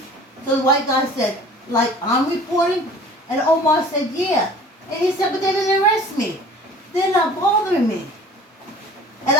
So the white guy said, like, I'm reporting? And Omar said, yeah. And he said, but they didn't arrest me. They're not bothering me. And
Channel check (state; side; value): normal; both; correlation 0.47